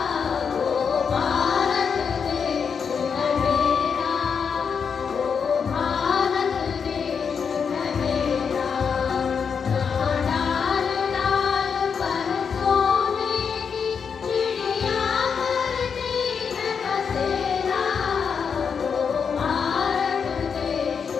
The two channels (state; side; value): quieter; right; 6.4 dB